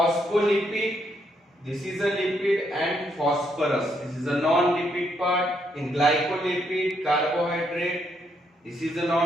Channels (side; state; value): both; normal; correlation 0.75